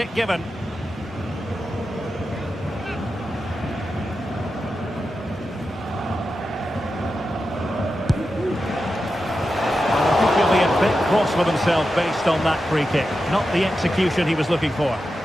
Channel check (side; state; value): both; normal; correlation 0.90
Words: given. Well, I think he'll be a bit cross with himself based on that free kick. Not the execution he was looking for.